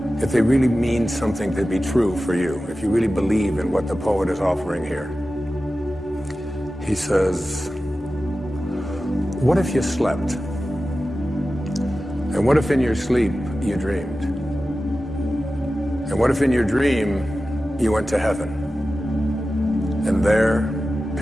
mean something to be true for you, if you really believe in what the poet is offering here. He says, what if you slept? And what if in your sleep you dreamed? And what if in your dream you went to heaven and there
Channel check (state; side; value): normal; both; correlation 0.94